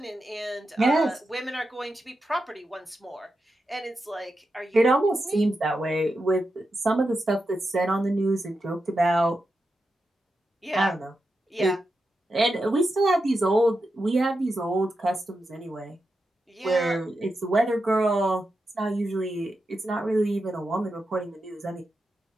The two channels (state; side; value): normal; both; correlation 0.88